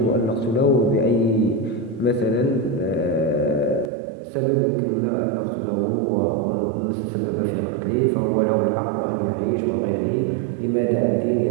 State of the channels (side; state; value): left; drops out; at 3.9 s